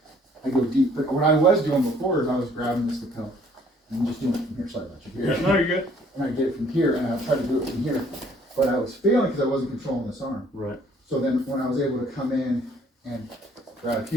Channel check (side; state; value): both; normal; correlation 0.60